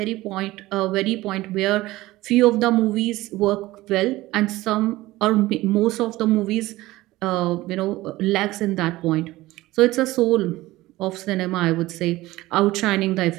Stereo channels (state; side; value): quieter; left; 18.1 dB